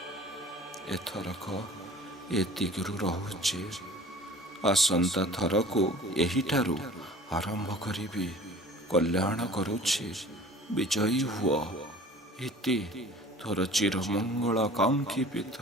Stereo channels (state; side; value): normal; both; correlation 0.45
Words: ଏଥରକ ଏତିକିରୁ ରହୁଛି। ଆସନ୍ତା ଥରକୁ ଏହିଠାରୁ ଆରମ୍ଭ କରିବି। କଲ୍ୟାଣ କରୁଛି। ବିଜୟୀ ହୁଅ। ଇତି ତୋର ଚିରମଙ୍ଗଳ କାଙ୍କ୍ଷୀ